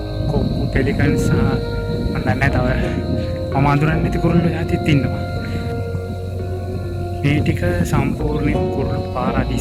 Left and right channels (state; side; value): identical; both; correlation 1.00